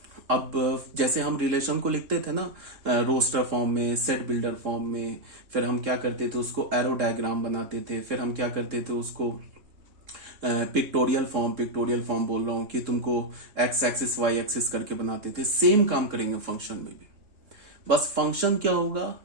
अब जैसे हम रिलेशन को लिखते थे ना रोस्टर फॉर्म में, सेट बिल्डर फॉर्म में, फिर हम क्या करते थे उसको एरो डायग्राम बनाते थे, फिर हम क्या करते थे उसको पिक्टोरियल फॉर्म बोल रहा हूं कि तुमको एक्स एक्सिस वाई एक्सिस करके बनाते थे। सेम काम करेंगे फंक्शन में भी। बस फंक्शन क्या होगा,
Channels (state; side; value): late; left; 3.7 ms